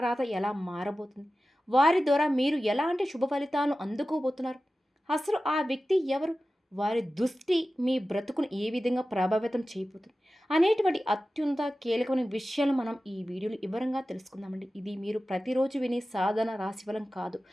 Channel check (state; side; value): normal; both; correlation 0.95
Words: ఎలా మారబోతుంది? వారి ద్వారా మీరు ఎలాంటి శుభ ఫలితాలను అందుకోబోతున్నారు? అసలు ఆ వ్యక్తి ఎవరు? వారి దృష్టి మీ బ్రతుకును ఏ విధంగా ప్రభావితం చేయబోతుంది? అనేటువంటి అత్యంత కీలకమైన విషయాలు మనం ఈ వీడియోలో వివరంగా తెలుసుకుందామండి. ఇది మీరు ప్రతిరోజు వినే సాధారణ రాశిఫలం కాదు.